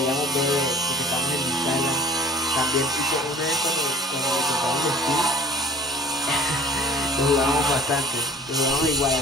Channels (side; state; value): both; normal; correlation 0.48